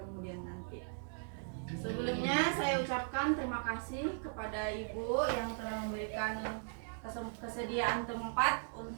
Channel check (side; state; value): left; silent; digital silence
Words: nanti. Sebelumnya saya ucapkan terima kasih kepada Ibu yang telah memberikan kesediaan tempat